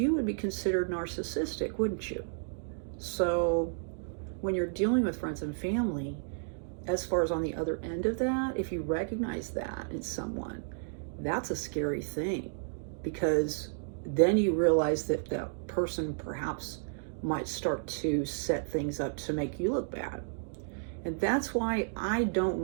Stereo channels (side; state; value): left; silent; digital silence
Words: would be considered narcissistic, wouldn't you? So when you're dealing with friends and family, as far as on the other end of that, if you recognize that in someone, that's a scary thing, because then you realize that that person perhaps might start to set things up to make you look bad. And that's why I don't